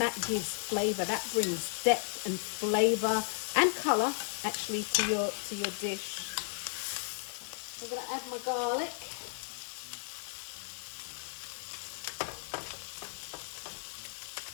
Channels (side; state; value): right; silent; digital silence